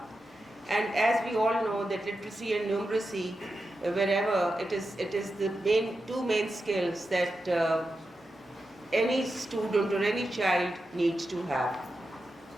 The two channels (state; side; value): normal; both; correlation 0.90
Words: And as we all know, that literacy and numeracy, wherever it is the two main skills that any student or any child needs to have,